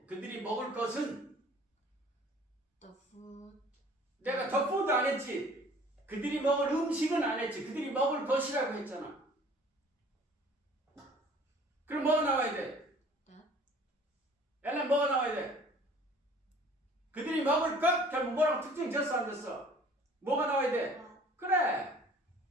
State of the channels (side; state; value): both; normal; correlation 0.51